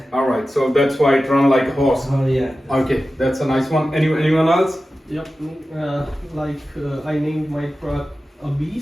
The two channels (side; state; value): both; normal; correlation 0.94